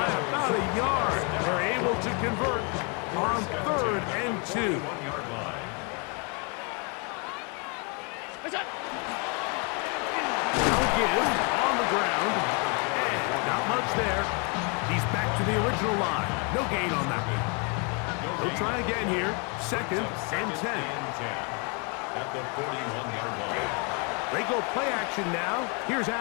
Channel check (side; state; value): right; quieter; 34.6 dB